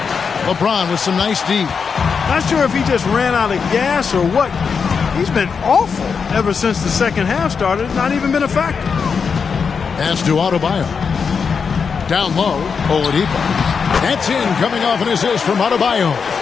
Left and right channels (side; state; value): right; quieter; 5.8 dB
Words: LeBron with some nice D. Not sure if he just ran out of gas or what. He's been awful ever since the second half started. Not even been a factor. Pass to Adebayo. Down low, Oladipo. That's in, coming off an assist from Adebayo.